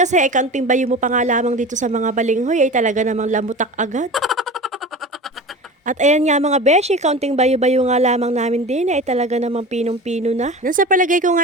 ay kaunting bayo mo pa nga lamang dito sa mga balinghoy ay talaga namang lamutak agad. At ayan nga mga beshi, kaunting bayo-bayo nga lamang namin din ay talaga namang pinong-pino na. Nang sa palagay ko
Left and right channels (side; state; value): both; normal; correlation 0.34